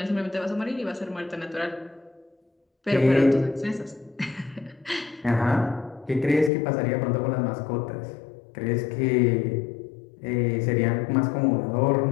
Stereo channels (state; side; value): drops out; right; at 6.5 s